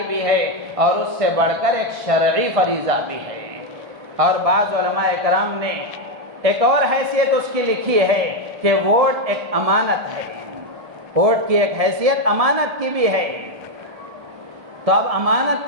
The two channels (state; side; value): late; left; 1.7 ms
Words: بھی ہے، اور اس سے بڑھ کر ایک شرعی فریضہ بھی ہے۔ اور بعض علماء کرام نے ایک اور حیثیت اس کی لکھی ہے کہ ووٹ ایک امانت ہے، ووٹ کی ایک حیثیت امانت کی بھی ہے۔ تو اب امانت